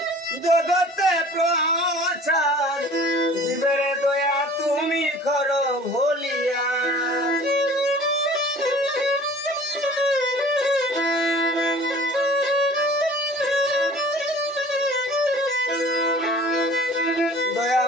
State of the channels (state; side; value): normal; both; correlation 0.47